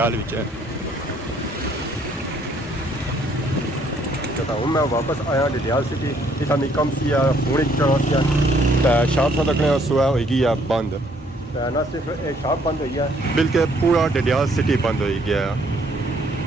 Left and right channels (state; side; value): normal; both; correlation 0.66